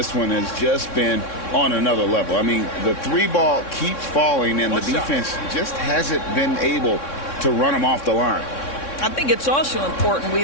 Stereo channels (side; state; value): right; late; 3.6 ms